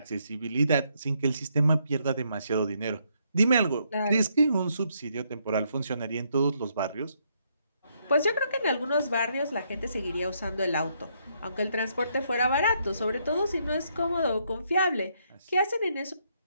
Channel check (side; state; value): both; inverted; correlation -0.74